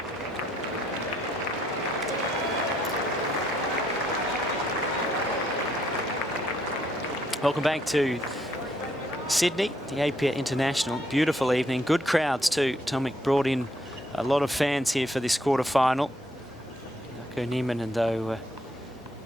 Welcome back to Sydney, the Apia International. Beautiful evening, good crowds too. Tomic brought in a lot of fans here for this quarterfinal. Jarkko Nieminen, though,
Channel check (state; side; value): normal; both; correlation 0.71